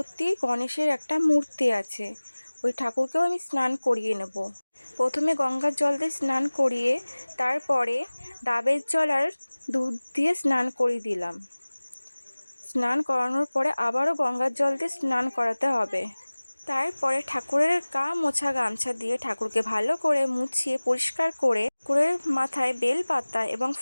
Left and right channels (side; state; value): both; inverted; correlation -1.00